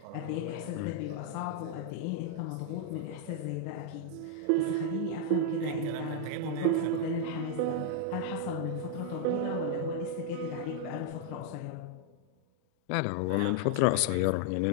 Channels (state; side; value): different; both; correlation -0.01